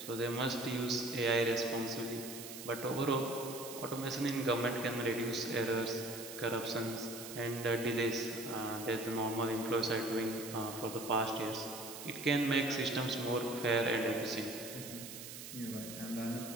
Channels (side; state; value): right; noise; hiss, 10 dB below the sound